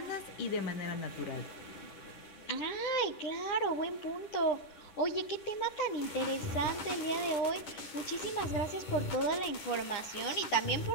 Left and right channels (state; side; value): late; right; 10 ms